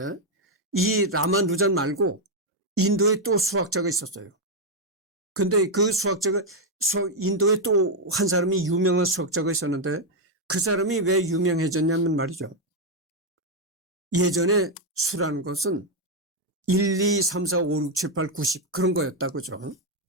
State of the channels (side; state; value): both; normal; correlation 0.02